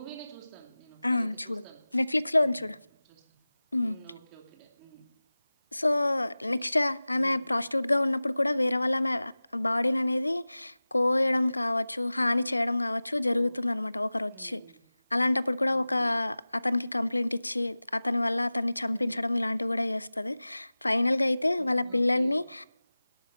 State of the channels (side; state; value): both; inverted; correlation -0.98